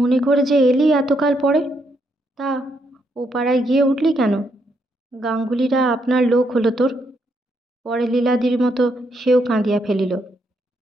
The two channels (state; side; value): normal; both; correlation 0.77